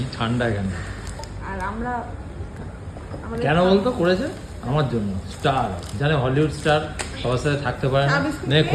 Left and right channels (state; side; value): identical; both; correlation 1.00